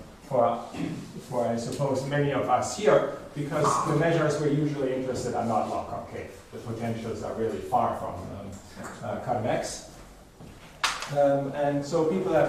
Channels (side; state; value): both; identical; correlation 1.00